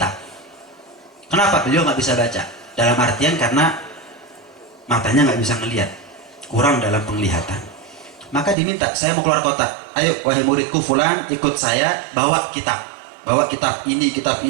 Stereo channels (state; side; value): drops out; left; at 8.6 s